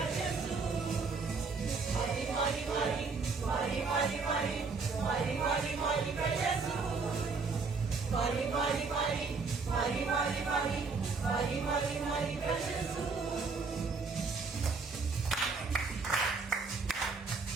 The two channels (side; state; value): left; quieter; 4.5 dB